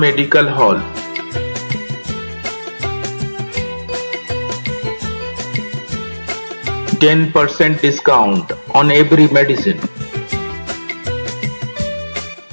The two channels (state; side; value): inverted; both; correlation -1.00